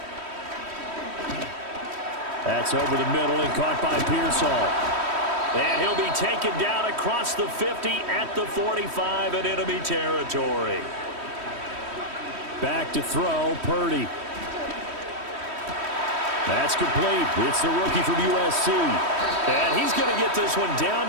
That's over the middle and caught by Pearsall. And he'll be taken down across the 50 at the 45 in enemy territory. Back to throw, Purdy. That's complete. It's the rookie from USC. And he's going to get this one down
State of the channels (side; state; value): left; late; 3.1 ms